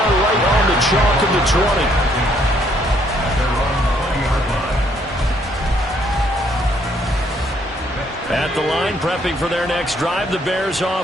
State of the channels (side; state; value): both; normal; correlation 0.68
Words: right on the chalk of the 20. At the line, prepping for their next drive, the Bears